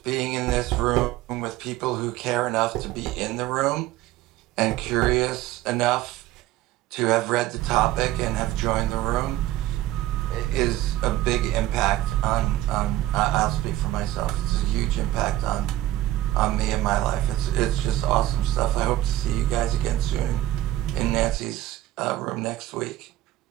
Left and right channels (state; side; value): quieter; left; 14.9 dB